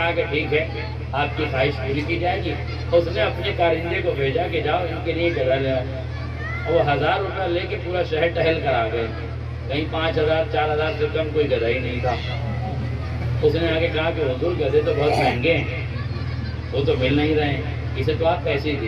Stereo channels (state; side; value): identical; both; correlation 1.00